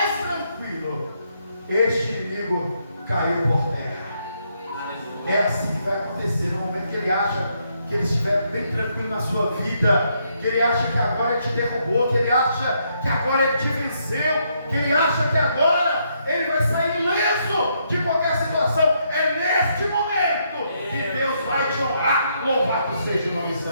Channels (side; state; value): both; inverted; correlation -0.75